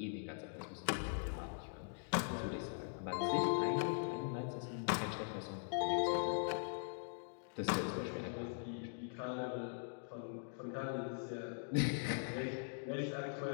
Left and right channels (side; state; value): right; silent; digital silence